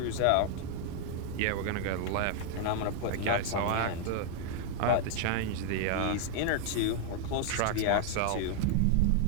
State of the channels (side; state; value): both; different; correlation 0.00